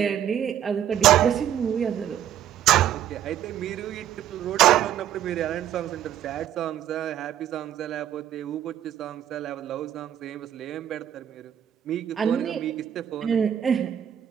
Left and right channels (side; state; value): left; quieter; 10.5 dB